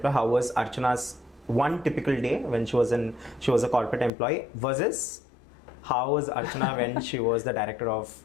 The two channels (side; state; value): right; drops out; at 4.1 s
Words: How was Archana's one typical day when she was a corporate employee versus how was Archana when she was the director of